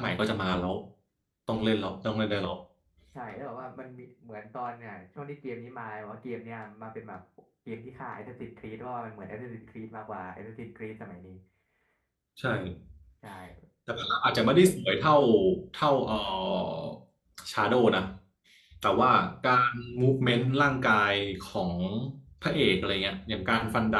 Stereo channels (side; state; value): both; identical; correlation 1.00